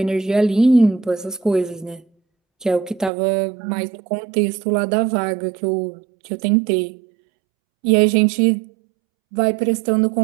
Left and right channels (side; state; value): left; drops out; at 3.1 s